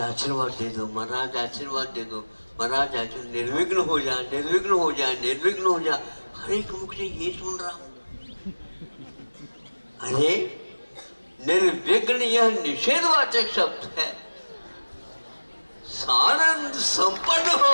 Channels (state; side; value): inverted; both; correlation -1.00